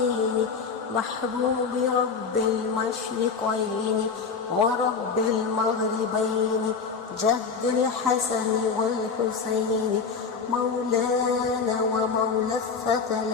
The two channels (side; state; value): right; quieter; 5.4 dB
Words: محبوب رب المشرقين ورب المغربين جد الحسن والحسين مولانا ومولى